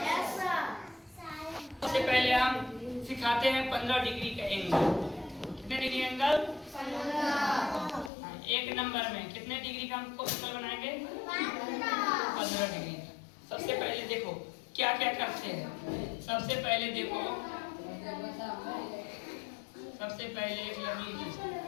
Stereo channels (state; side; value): drops out; right; at 8.1 s